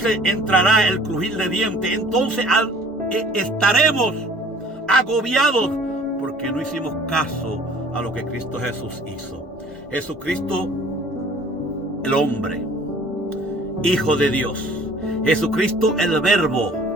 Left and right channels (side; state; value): both; normal; correlation 0.52